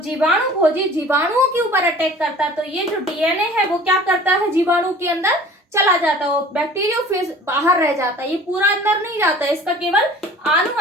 जीवाणु भोजी जीवाणुओं के ऊपर अटैक करता है तो ये जो डीएनए है वो क्या करता है? जीवाणु के अंदर चला जाता है, वो बैक्टीरियोफेज बाहर रह जाता है, ये पूरा अंदर नहीं जाता है। इसका केवल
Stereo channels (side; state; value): both; normal; correlation 0.46